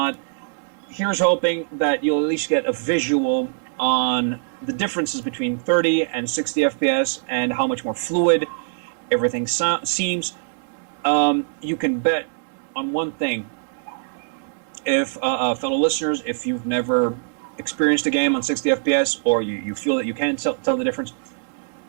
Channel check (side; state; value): left; silent; digital silence